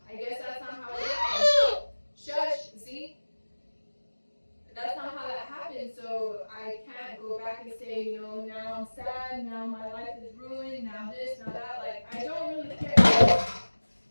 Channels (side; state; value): both; inverted; correlation -1.00